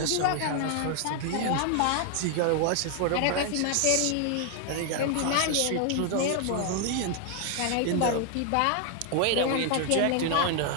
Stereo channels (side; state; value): both; different; correlation 0.00